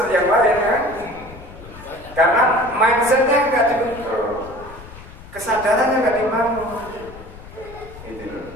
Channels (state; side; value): noise; left; rumble, 17 dB below the sound